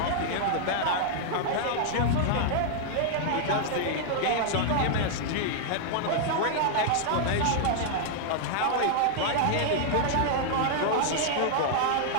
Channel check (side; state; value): both; different; correlation -0.01